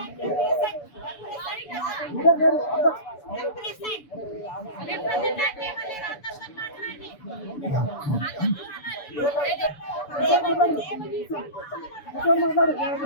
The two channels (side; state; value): right; late; 6.9 ms